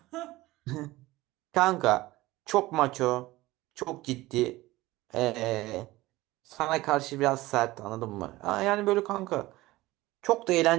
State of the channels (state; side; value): quieter; left; 18.6 dB